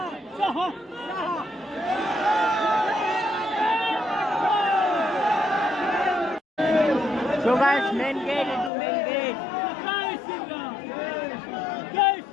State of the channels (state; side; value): drops out; right; at 8.7 s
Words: so guys main gate, itu main gate